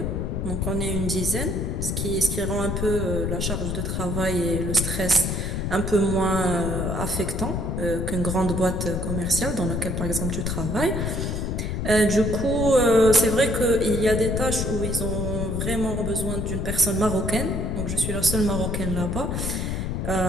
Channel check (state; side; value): noise; left; rumble, 1 dB below the sound